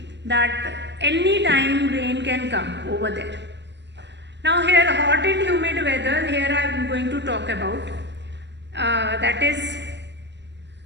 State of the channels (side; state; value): left; late; 0.51 ms